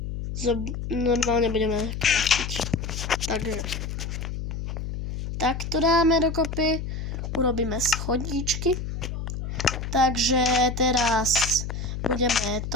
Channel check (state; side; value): noise; left; hum, 5 dB below the sound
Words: normálne budeme kraftiť. Takže takto dáme dokopy, urobíme schodíčky. Takže teraz budeme